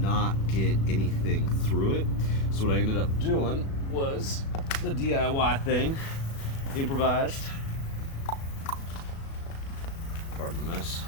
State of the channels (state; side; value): late; right; 36 ms